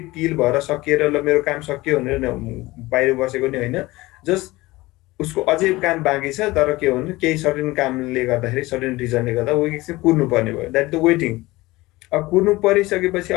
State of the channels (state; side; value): quieter; right; 20.0 dB